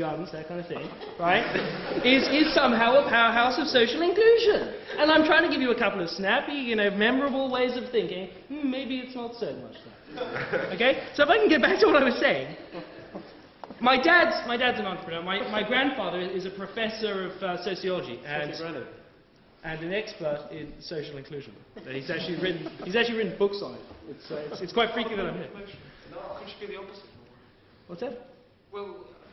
that kind of thing, right, is somehow a powerhouse of social inclusion. And I'm trying to give you a couple of snappy, memorable ways of thinking. Maybe it's not so much that. Okay? So if I can get back to what I was saying. My dad's an entrepreneur. My grandfather is a professor of sociology and an expert in social inclusion. He's actually written books on it. It's quite freaky that I'm here. No, could you be the opposite? What's that? Well,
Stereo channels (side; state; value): both; identical; correlation 1.00